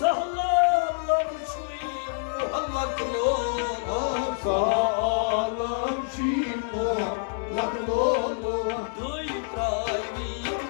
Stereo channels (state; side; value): silent; right; 60 dB below the other